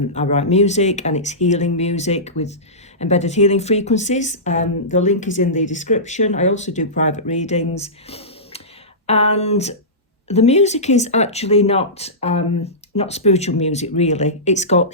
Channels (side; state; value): both; normal; correlation -0.19